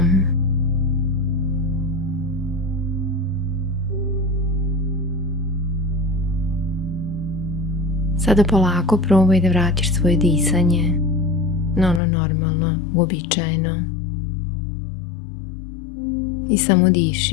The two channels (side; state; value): right; drops out; at 12.0 s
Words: Sada polako probaj da vratiš svoje disanje na ono normalno, uobičajeno. I samo